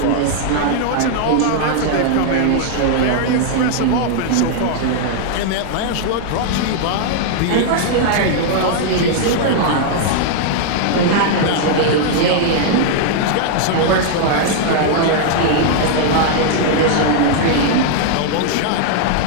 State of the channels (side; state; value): both; different; correlation 0.00